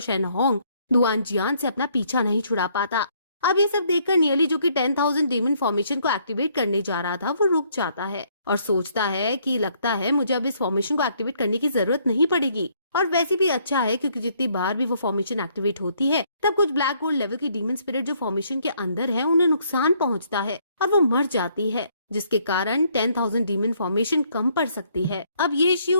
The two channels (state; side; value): inverted; both; correlation -0.67